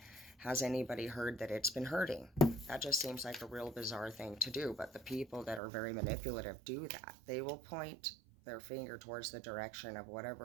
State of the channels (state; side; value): drops out; left; at 5.6 s